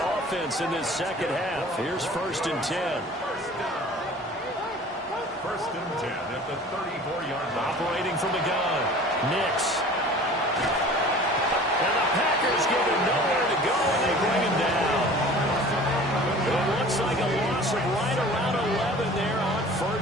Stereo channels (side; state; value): both; normal; correlation 0.44